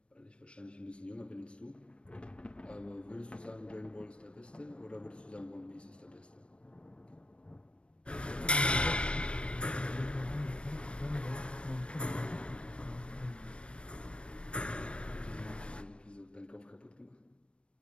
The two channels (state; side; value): late; right; 0.058 ms